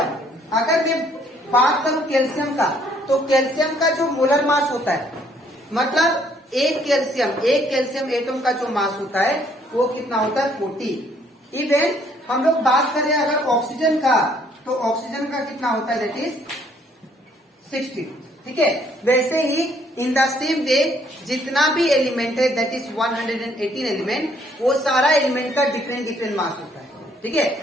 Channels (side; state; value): both; normal; correlation 0.65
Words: अगर मैं बात करूं कैल्शियम का, तो कैल्शियम का जो मोलर मास होता है, मतलब एक कैल्शियम एटम का जो मास होता है वो कितना होता है, 40। इवन हम लोग बात करें अगर ऑक्सीजन का, तो ऑक्सीजन का कितना होता है, दैट इज 60। ठीक है, वैसे ही इन द सेम वे जितना भी एलिमेंट है दैट इज 118 एलिमेंट, वो सारा एलिमेंट का डिफरेंट मास होता है। ठीक है,